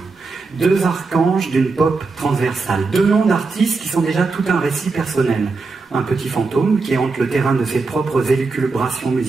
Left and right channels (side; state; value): left; quieter; 4.0 dB